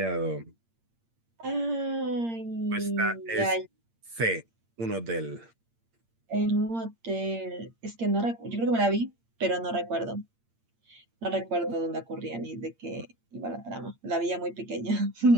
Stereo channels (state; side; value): late; left; 8.7 ms